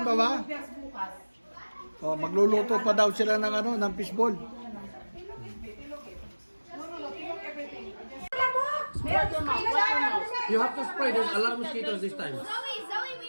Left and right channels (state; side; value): inverted; both; correlation -1.00